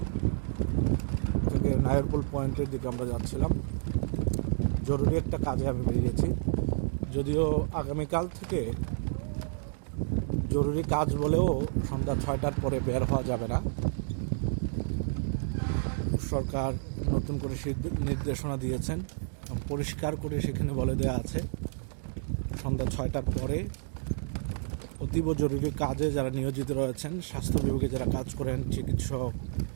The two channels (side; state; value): left; silent; digital silence